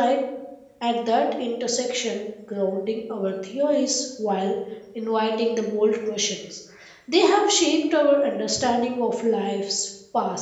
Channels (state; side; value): identical; both; correlation 1.00